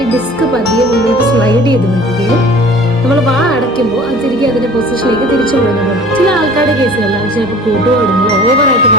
ഡിസ്ക് പതിയെ മുന്നോട്ട് സ്ലൈഡ് ചെയ്ത് വരികയും നമ്മൾ വാ അടയ്ക്കുമ്പോൾ അത് തിരികെ അതിന്റെ പൊസിഷനിലേക്ക് തിരിച്ചു പോകുന്നുണ്ട്. ചില ആൾക്കാരുടെ കേസുകളിലാണ് ചിലപ്പോൾ കൂട്ടുപാടുമ്പോൾ ഓവറായിട്ട്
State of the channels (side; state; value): both; normal; correlation 0.46